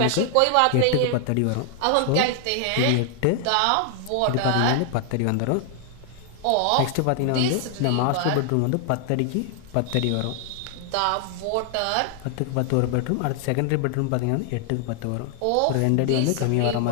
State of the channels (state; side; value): different; both; correlation 0.00